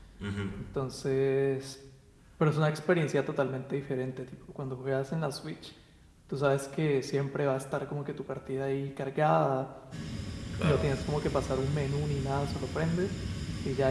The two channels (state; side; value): identical; both; correlation 1.00